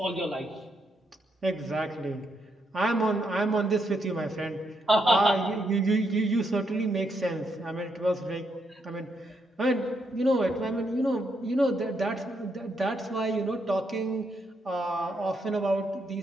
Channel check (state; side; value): normal; both; correlation 0.78